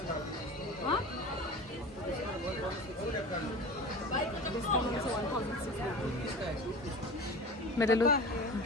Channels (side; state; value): both; normal; correlation 0.34